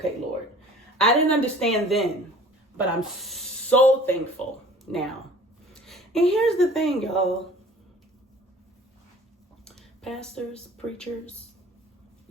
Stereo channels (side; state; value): both; normal; correlation 0.48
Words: Lord. I didn't understand then, but I'm so thankful now. And here's the thing, y'all. Pastors, preachers,